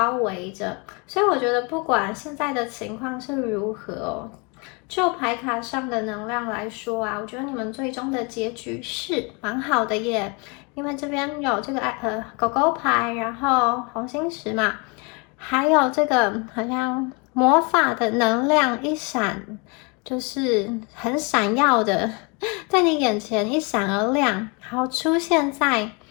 围着，所以我觉得不管现在的情况是如何哦，就牌卡上的能量来说啊，我觉得你们最终的结局是蛮好的耶，因为这边有这个狗狗牌，然后红心十嘛，还有这个好像魔法的能量一闪。就是很闪耀的，在你眼前一闪而亮，然后出现在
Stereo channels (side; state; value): right; quieter; 31.2 dB